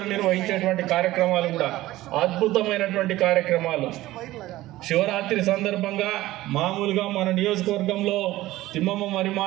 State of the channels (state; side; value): quieter; left; 16.7 dB